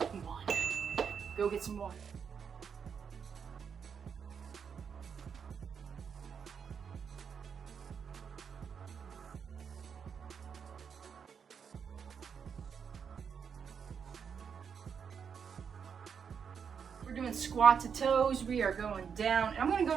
Go get some water. We're doing squat to toes. We are going down. And I'm going to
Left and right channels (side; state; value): left; quieter; 6.9 dB